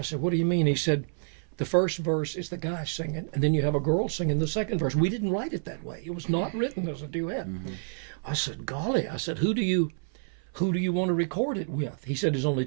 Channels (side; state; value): left; silent; 57 dB below the other